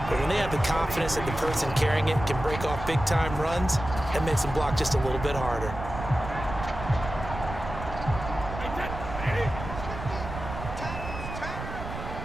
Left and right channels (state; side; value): noise; right; rumble, 8 dB below the sound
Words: But when they have the confidence that the person carrying it can break off big-time runs, that makes them block just a little bit harder.